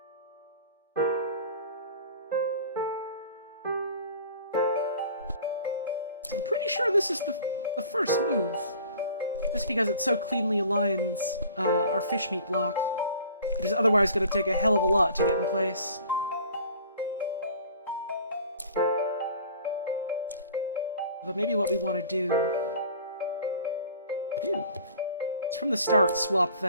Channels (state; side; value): inverted; both; correlation -0.47